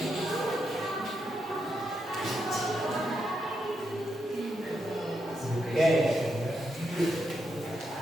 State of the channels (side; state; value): both; normal; correlation 0.82